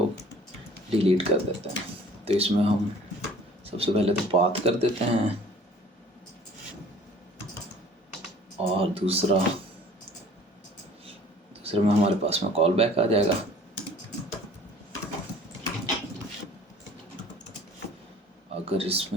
डिलीट कर देते हैं। तो इसमें हम सबसे पहले तो पाथ कर देते हैं, और दूसरे में हमारे पास में कॉल बैक आ जाएगा। अगर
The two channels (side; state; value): both; normal; correlation 0.50